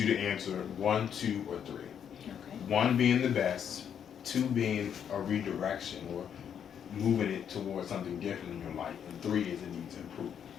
to answer one, two, or three. Okay. One being the best, two being a redirection or moving it towards something different in your life, and three is it needs improvement.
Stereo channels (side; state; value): right; quieter; 8.4 dB